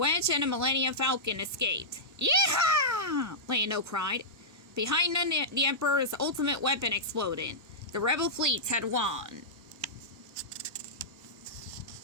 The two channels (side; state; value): both; normal; correlation -0.12